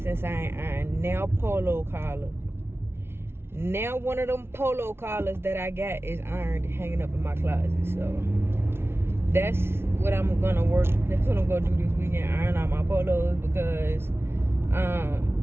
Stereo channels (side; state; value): left; late; 0.12 ms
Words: since I ain't ironed. Now polo collar. Now one of them polo collars that I got is ironed, hanging up in my closet. So that's what I'm gonna work. That's what I'm gonna do this weekend. Iron out my polos, because